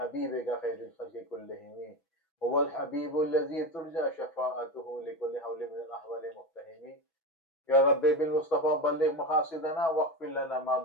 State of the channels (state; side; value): late; right; 6.1 ms